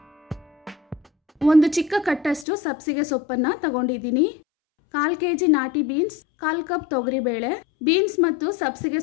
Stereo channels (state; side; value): drops out; right; at 2.5 s